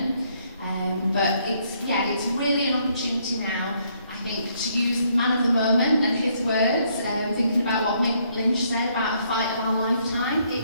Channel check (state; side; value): inverted; both; correlation -0.70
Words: But it's really an opportunity now, I think, to use the man of the moment and his words, thinking about what Mick Lynch said about a fight of our lifetime. It